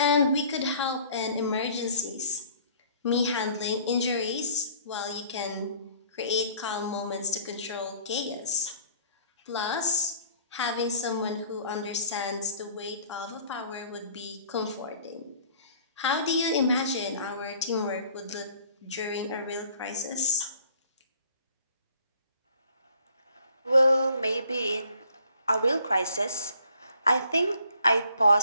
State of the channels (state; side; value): inverted; both; correlation -0.56